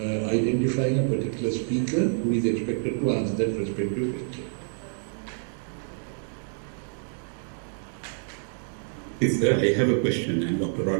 a particular speaker who is expected to answer that respective question. Yes, sir, I have a question. I'm Dr.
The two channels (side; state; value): left; silent; digital silence